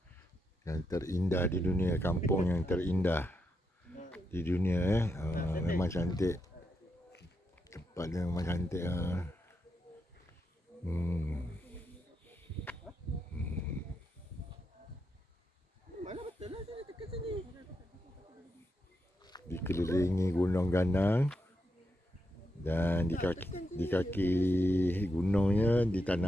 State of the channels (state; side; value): normal; both; correlation 0.84